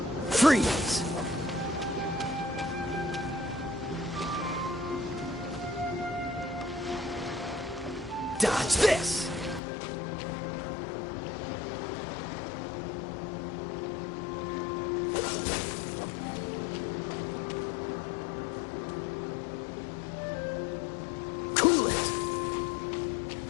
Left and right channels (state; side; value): drops out; right; at 9.6 s